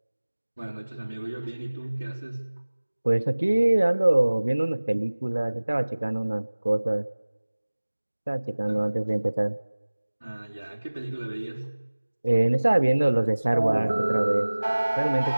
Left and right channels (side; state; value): both; inverted; correlation -1.00